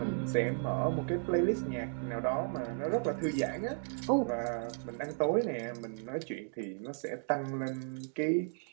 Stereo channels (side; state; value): left; silent; 55 dB below the other